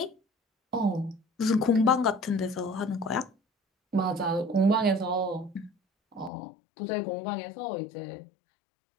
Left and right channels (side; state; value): right; drops out; at 6.3 s